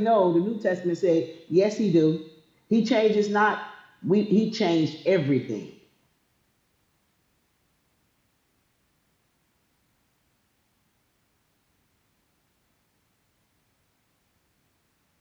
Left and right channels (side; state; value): both; identical; correlation 1.00